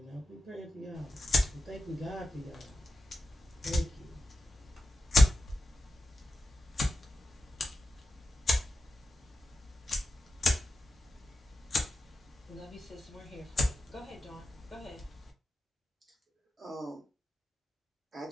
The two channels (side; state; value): both; normal; correlation 0.89